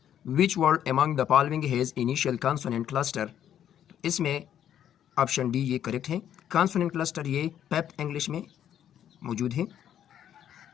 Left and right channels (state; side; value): quieter; right; 10.2 dB